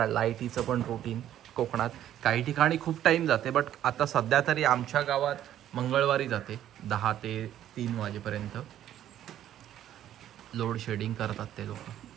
लाईटीचं पण रुटीन कोकणात. काही ठिकाणी खूप टाईम जाते बट आता सध्या तरी आमच्या गावात मंगळवारी जाते 10 ते 3 वाजेपर्यंत. लोड शेडिंग करतात ते लोक.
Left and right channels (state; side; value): quieter; left; 11.6 dB